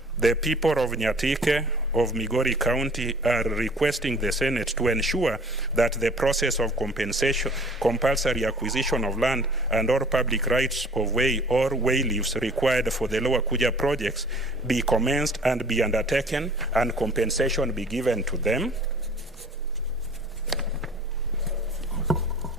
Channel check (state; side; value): normal; both; correlation 0.49